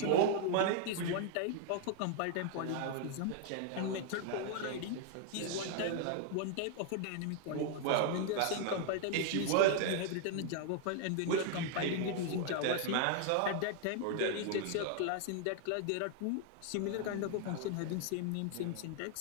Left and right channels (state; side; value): different; both; correlation 0.00